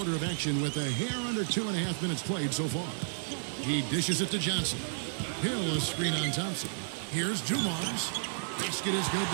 of action with a hair under 2.5 minutes played so far. He dishes it to Johnson. Hill a screen on Thompson. Here's Dumars. Basket is good.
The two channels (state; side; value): silent; left; digital silence